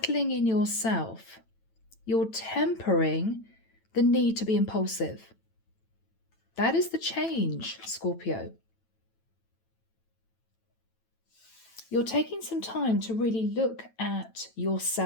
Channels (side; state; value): right; late; 9.0 ms